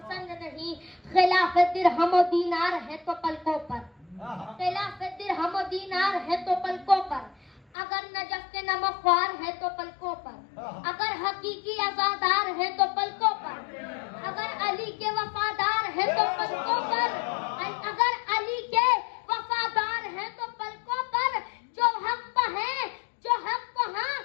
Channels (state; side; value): drops out; right; at 7.7 s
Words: नहीं। खिलाफ दिरहम और दीनार है तो पलकों पर, खिलाफ दिरहम और दीनार है तो पलकों पर। अगर नजफ के नमख्वार है तो पलकों पर, अगर हकीकी आजादार है तो पलकों पर, अगर अली के वफादार है तो पलकों पर, अगर अली के वफादार है तो पलकों पर। जो हक पर है, जो हक पर हाँ,